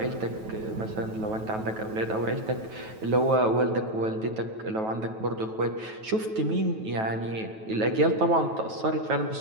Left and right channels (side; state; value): left; late; 9.2 ms